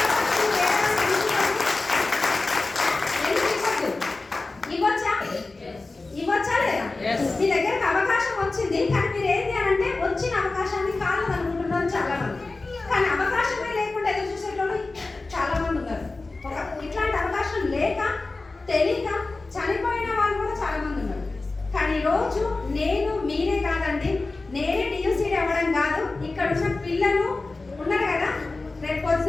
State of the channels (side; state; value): right; quieter; 3.5 dB